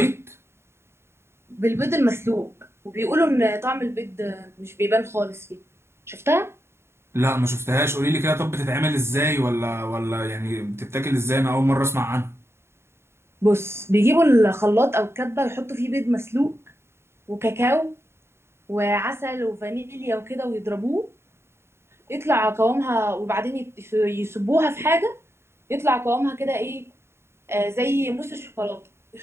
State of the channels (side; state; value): left; late; 0.12 ms